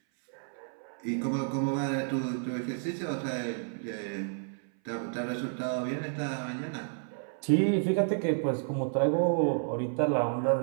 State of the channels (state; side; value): silent; left; 57 dB below the other